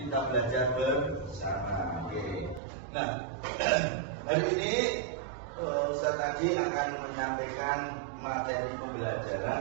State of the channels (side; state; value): left; drops out; at 2.6 s